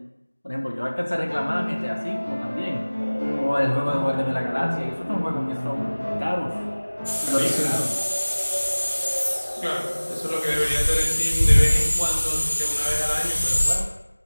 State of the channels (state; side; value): inverted; both; correlation -1.00